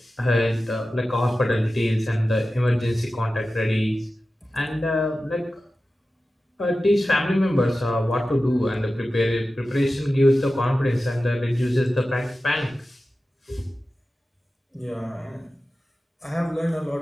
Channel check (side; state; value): both; normal; correlation 0.94